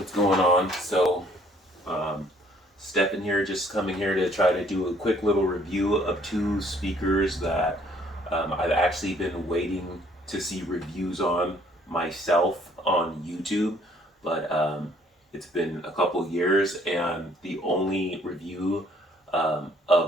going on? Um, Stephen here, just coming here to try to do a quick little review of two speakers that I've actually been waiting to see reviews on myself on YouTube, but it's been a couple years, and the only review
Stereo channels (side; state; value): both; normal; correlation 0.61